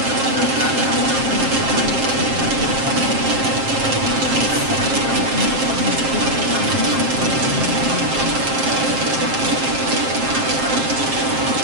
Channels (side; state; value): left; late; 7.5 ms